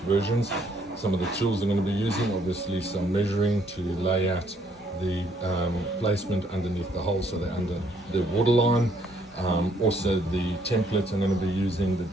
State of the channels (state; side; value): normal; both; correlation 0.67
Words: versions. Some of the tools I'm going to be using, obviously some measuring to lay out the placement underneath the hole so they're under the waterline. Also the template I'm going to be using, the